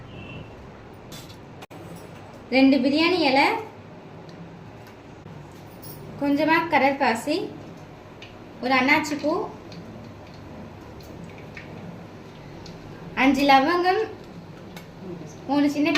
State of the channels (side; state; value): both; identical; correlation 1.00